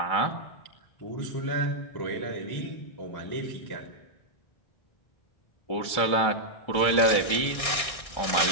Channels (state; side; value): late; right; 1.6 ms